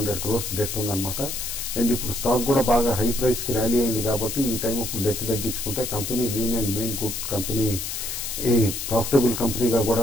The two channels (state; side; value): noise; left; hiss, 5 dB below the sound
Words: crores డెట్ ఉందన్నమాట. అండ్ ఇప్పుడు స్టాక్ కూడా బాగా హై ప్రైస్ కి ర్యాలీ అయింది కాబట్టి ఈ టైం అప్పుడు డెట్ తగ్గించుకుంటే company lean and mean good company profitable కంపెనీగా